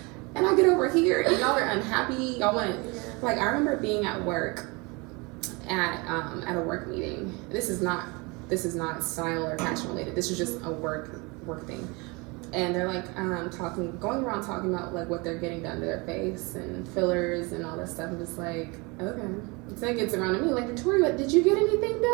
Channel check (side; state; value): left; quieter; 27.6 dB